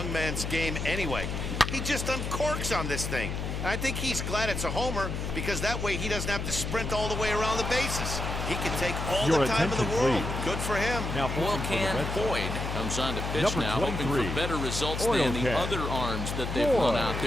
man's game anyway? He just uncorks on this thing. And I think he's glad it's a homer because that way he doesn't have to sprint all the way around the bases. He can take all Your the time in the attention, world. please. Good for him. Now pitching Oil for the Can Red Sox. Boyd comes on to pitch Number now, hoping 23. for better results Oil than the Can. other arms that they've Boyd. run out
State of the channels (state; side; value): noise; left; hum, 3 dB below the sound